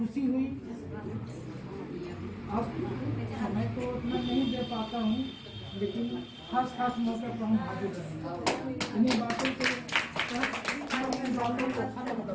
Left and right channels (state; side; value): identical; both; correlation 1.00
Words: हुई। अब समय तो उतना नहीं दे पाता हूँ, लेकिन खास मौके पर हम हाजिर रहेंगे। इन्हीं बातों से